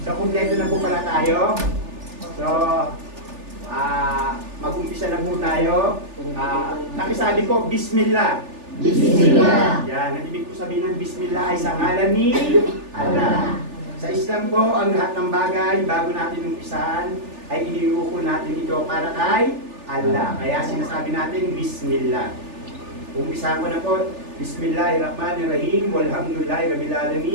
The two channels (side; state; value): left; late; 3.4 ms